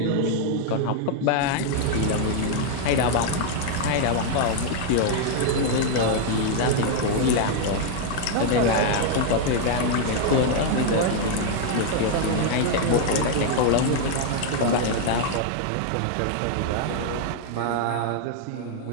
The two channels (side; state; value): both; different; correlation 0.00